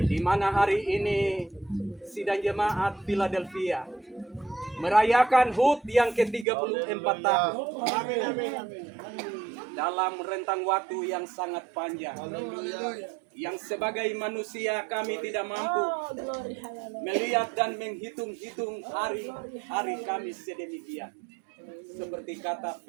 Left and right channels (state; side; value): drops out; left; at 6.5 s